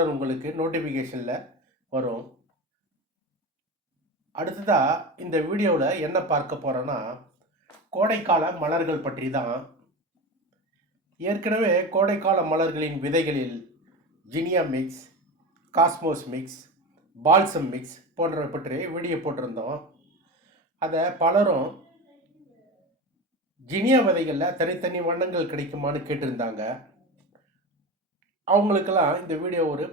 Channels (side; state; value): both; normal; correlation 0.25